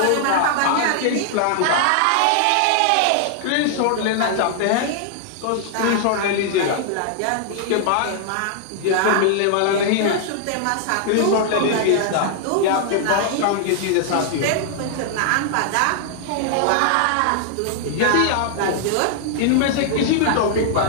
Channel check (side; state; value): both; different; correlation -0.01